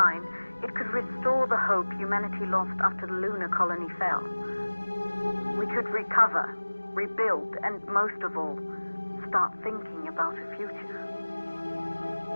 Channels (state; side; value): inverted; both; correlation -1.00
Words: it could restore the hope humanity lost after the lunar colony fell. We could recover, rebuild, and most of all, start thinking about a future.